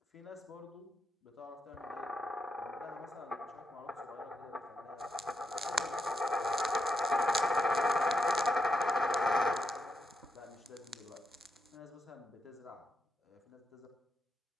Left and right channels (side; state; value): both; normal; correlation 0.84